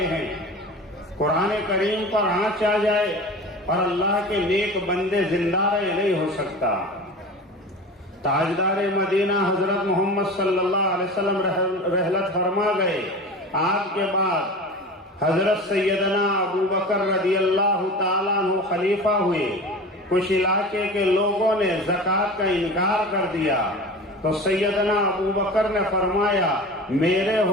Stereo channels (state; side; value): normal; both; correlation 0.34